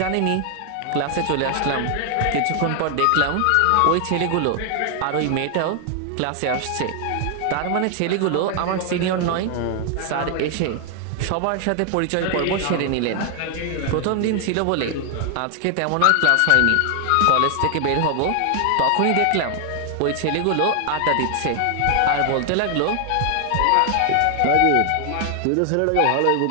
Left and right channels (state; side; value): different; both; correlation 0.00